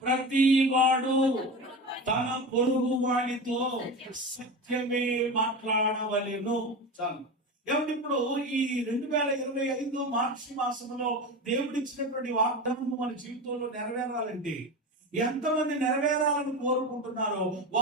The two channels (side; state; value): both; normal; correlation 0.26